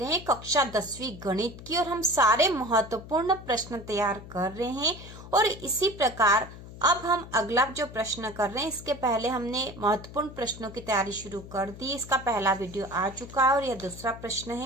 हैं कक्षा 10वीं गणित की और हम सारे महत्वपूर्ण प्रश्न तैयार कर रहे हैं। और इसी प्रकार अब हम अगला जो प्रश्न कर रहे हैं, इसके पहले हमने महत्वपूर्ण प्रश्नों की तैयारी शुरू कर दी। इसका पहला वीडियो आ चुका है और यह दूसरा प्रश्न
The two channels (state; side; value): noise; left; hum, 15 dB below the sound